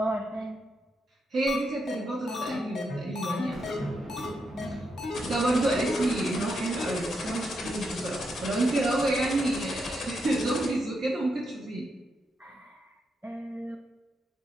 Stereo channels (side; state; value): both; normal; correlation 0.82